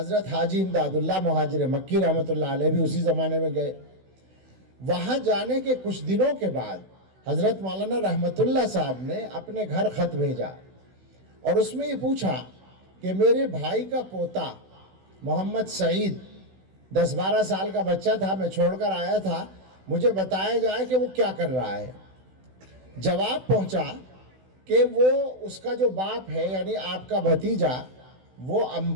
حاجی امداد اللہ مہاجر مکی رحمت اللہ علیہ بھی اسی زمانے میں گئے۔ وہاں جانے کے کچھ دنوں کے بعد حضرت مولانا رحمت اللہ صاحب نے اپنے گھر خط بھیجا اور اس میں یہ پوچھا کہ میرے بھائی کا پوتا محمد سعید 10-12 سال کا بچہ تھا، میں چھوڑ کر آیا تھا، مجھے بتایا جائے کہ وہ کیا کر رہا ہے۔ جواب پہنچا کہ وہ اس کا جو باپ ہے یعنی آپ کا بھتیجا وہ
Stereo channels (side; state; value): left; late; 16 ms